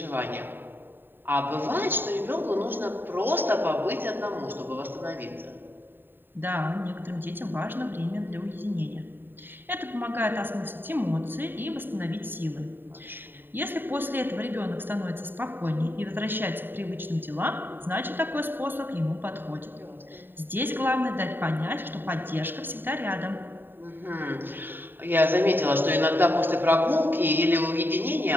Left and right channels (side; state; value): left; late; 0.095 ms